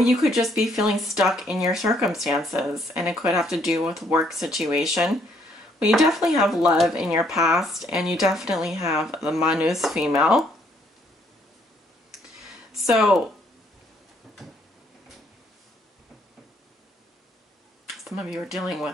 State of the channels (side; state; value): both; normal; correlation 0.68